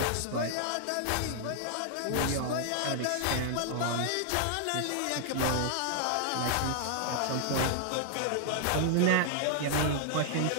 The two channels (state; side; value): different; both; correlation -0.01